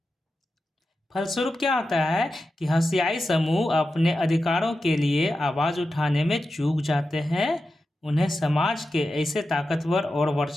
फलस्वरूप क्या होता है कि हंसियाई समूह अपने अधिकारों के लिए आवाज़ उठाने में चूक जाते हैं। उन्हें समाज के ऐसे ताकतवर और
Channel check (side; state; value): both; normal; correlation 0.91